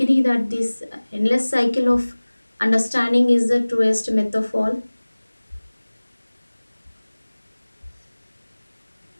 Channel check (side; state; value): both; inverted; correlation -1.00